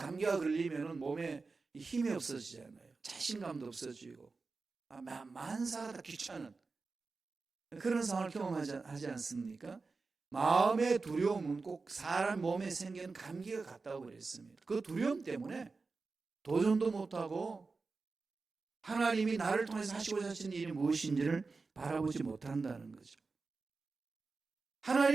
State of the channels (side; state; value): left; quieter; 4.1 dB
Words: 걸리면 몸에 힘이 없어지잖아요. 자신감도 없어지고 만사가 다 귀찮은 그런 상황을 경험하지 않습니까? 마음의 두려움은 꼭 사람 몸에 생기는 감기가 같다고 그랬습니다. 그 두려움 때문에 도전도 못하고 하나님이 나를 통해서 하시고자 하신 일이 무엇인지를 바라보지 못한다는 거죠.